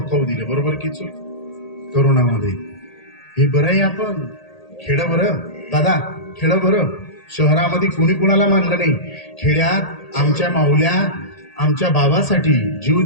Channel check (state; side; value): late; right; 1.8 ms